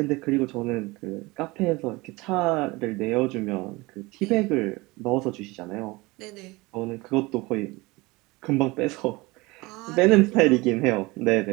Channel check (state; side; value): quieter; left; 22.9 dB